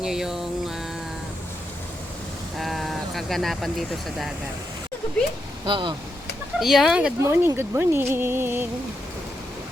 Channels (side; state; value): both; normal; correlation 0.83